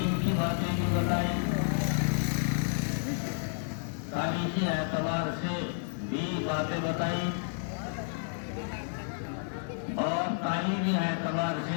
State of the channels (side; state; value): right; silent; digital silence